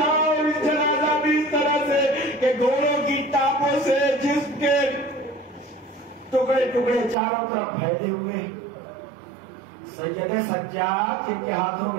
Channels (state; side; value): drops out; left; at 7.2 s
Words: اور اس جنازہ بھی اس طرح سے کہ گھوڑوں کی ٹاپوں سے جسم کے ٹکڑے ٹکڑے چاروں طرف پھیلے ہوئے. سید سجاد جن کے ہاتھوں